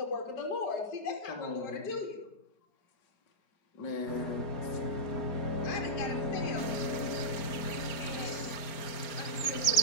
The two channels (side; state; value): right; late; 4.9 ms